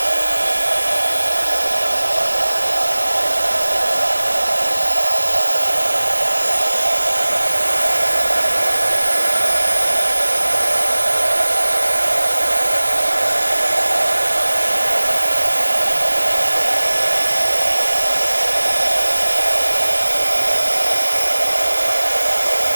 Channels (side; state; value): both; inverted; correlation -1.00